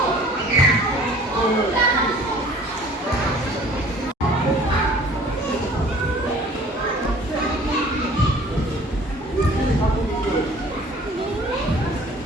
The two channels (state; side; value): normal; both; correlation 0.50